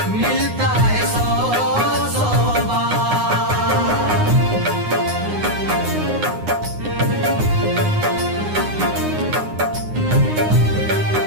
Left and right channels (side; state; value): left; late; 9.7 ms